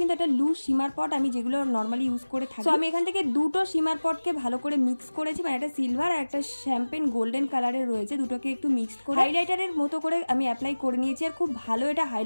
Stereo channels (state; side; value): inverted; both; correlation -1.00